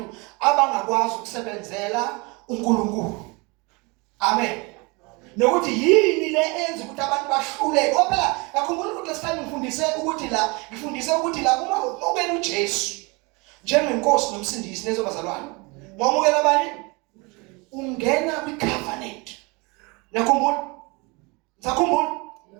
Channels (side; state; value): left; quieter; 27.7 dB